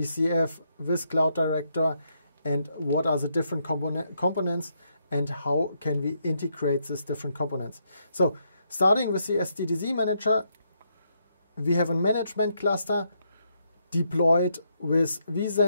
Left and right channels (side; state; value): both; inverted; correlation -0.77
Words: with Cloud Director, and what are the different components and how can we integrate these different components. So starting with the SDDC manager, we have a management cluster deployed with